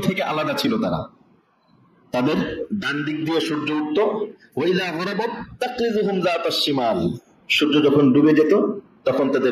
থেকে আলাদা ছিল তারা, তাদের ডান দিক দিয়ে সূর্য উঠতো, ওয়াইলা গরাবাত তাকরিজুহুম যাতাশ শিমাল, সূর্য যখন ডুবে যেত তখন তাদের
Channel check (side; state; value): both; identical; correlation 1.00